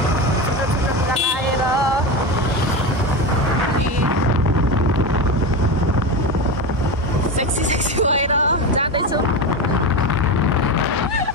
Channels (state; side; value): normal; both; correlation 0.20